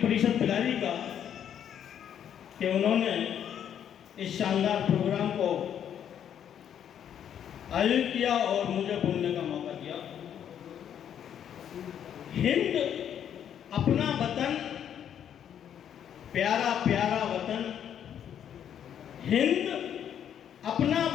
परिषद बिलारी का कि उन्होंने इस शानदार प्रोग्राम को आयोजित किया और मुझे बोलने का मौका दिया। हिंद अपना वतन, प्यारा प्यारा वतन, हिंद अपना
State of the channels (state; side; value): quieter; right; 9.3 dB